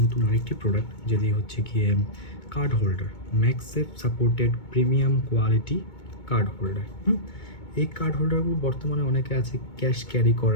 নতুন আরেকটি প্রোডাক্ট, যেটি হচ্ছে গিয়ে card holder, MagSafe supported premium quality card holder. এই কার্ড হোল্ডারগুলো বর্তমানে অনেকে আছে ক্যাশ ক্যারি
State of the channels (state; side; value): late; right; 2.2 ms